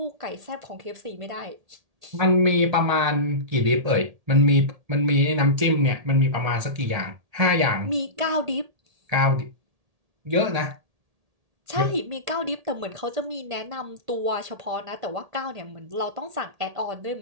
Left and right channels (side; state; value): left; late; 1.8 ms